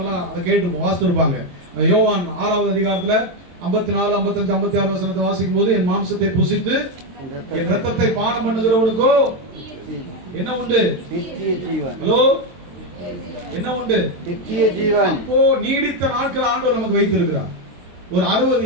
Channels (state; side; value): late; left; 22 ms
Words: எல்லாம் அதை கேட்டு வாசித்திருப்பாங்க. யோவான் 6வது அதிகாரத்துல 54, 55, 56 வசனத்தை வாசிக்கும் போது, என் மாம்சத்தை புசித்து என் ரத்தத்தை பானம் பண்ணுகிறவனுக்கோ என்ன உண்டு? நித்திய ஜீவன். ஹலோ, என்ன உண்டு? நித்திய ஜீவன். அப்போ நீடித்த நாட்கள் ஆண்டவர் நமக்கு வைத்திருக்கிறார். ஒரு